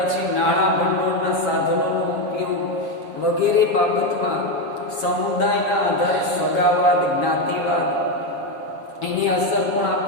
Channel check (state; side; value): late; right; 7.4 ms